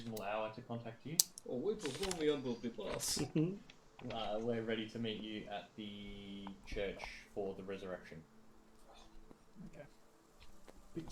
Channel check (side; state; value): both; identical; correlation 1.00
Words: hour to contact you. Oh, we perform the unbelievable class. We're ready to meet you at the church for the resurrection. Okay.